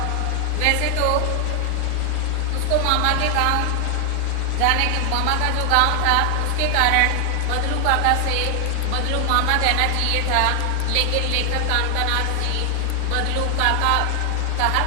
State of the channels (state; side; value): different; both; correlation 0.00